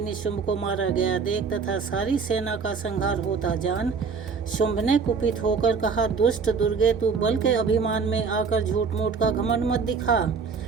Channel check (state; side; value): quieter; left; 5.4 dB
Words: को मारा गया देख तथा सारी सेना का संहार होता जान शुंभ ने कुपित होकर कहा, दुष्ट दुर्गे, तू बल के अभिमान में आकर झूठ मूठ का घमंड मत दिखा।